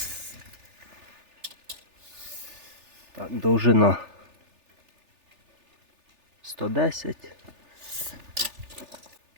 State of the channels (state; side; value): late; left; 3.4 ms